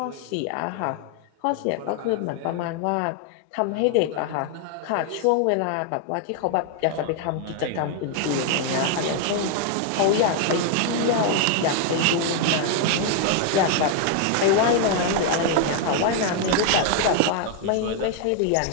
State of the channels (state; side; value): different; both; correlation 0.00